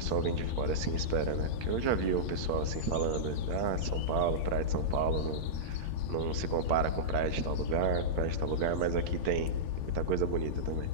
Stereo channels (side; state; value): left; late; 8.7 ms